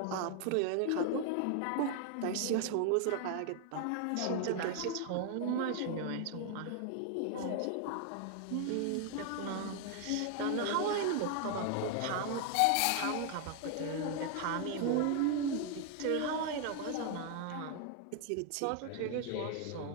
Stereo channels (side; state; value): both; different; correlation 0.00